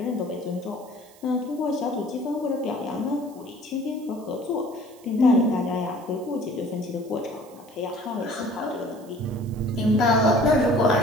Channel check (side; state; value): right; noise; hiss, 25 dB below the sound